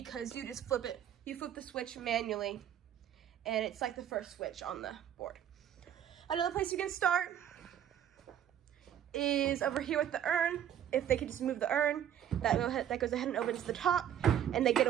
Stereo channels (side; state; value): left; quieter; 10.2 dB